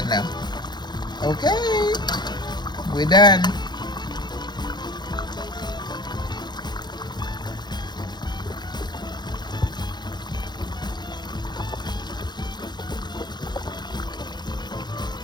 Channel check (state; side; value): late; right; 0.21 ms